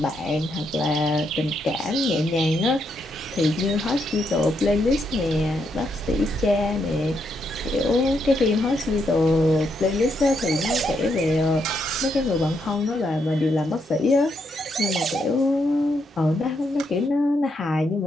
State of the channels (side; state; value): both; normal; correlation 0.78